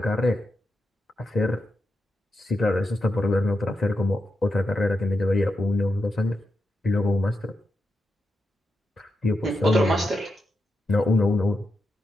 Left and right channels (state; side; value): normal; both; correlation 0.86